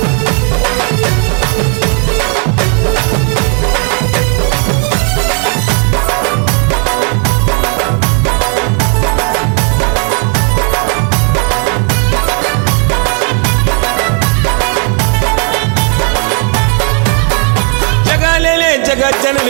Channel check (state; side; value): quieter; left; 38.9 dB